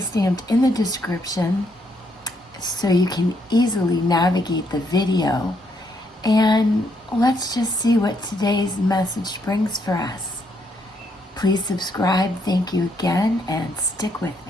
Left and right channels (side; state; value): both; normal; correlation 0.74